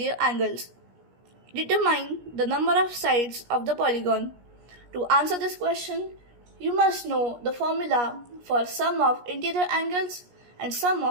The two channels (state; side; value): late; left; 17 ms